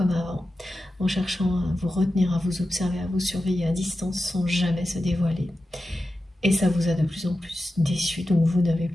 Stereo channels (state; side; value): normal; both; correlation 0.92